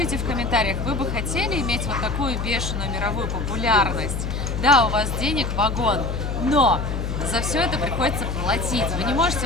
в комментариях, вы бы хотели иметь вот такую бешеную мировую популярность? Да, у вас денег вагон, но за все это приходится платить. Вы не можете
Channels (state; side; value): noise; left; hum, 3 dB below the sound